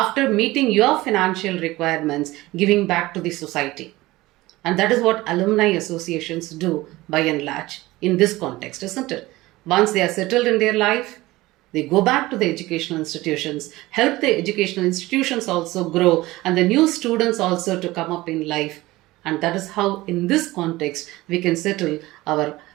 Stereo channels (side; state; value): left; quieter; 18.9 dB